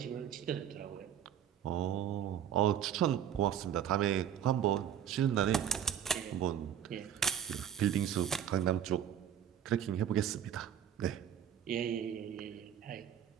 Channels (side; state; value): left; quieter; 9.7 dB